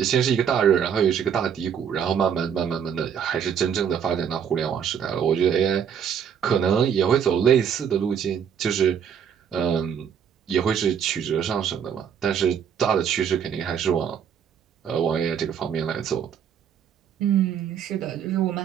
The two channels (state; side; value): quieter; left; 7.9 dB